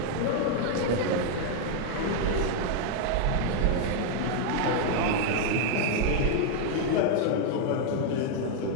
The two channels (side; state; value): both; different; correlation 0.00